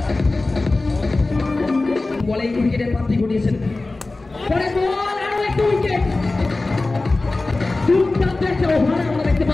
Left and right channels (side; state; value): right; quieter; 3.2 dB